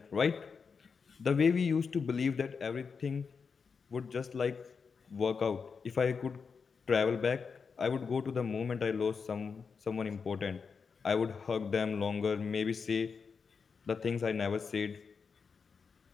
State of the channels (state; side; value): quieter; right; 5.5 dB